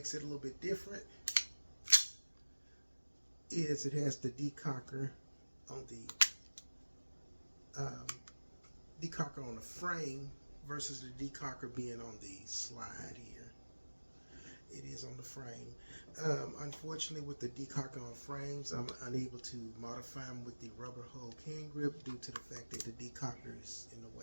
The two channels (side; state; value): both; inverted; correlation -1.00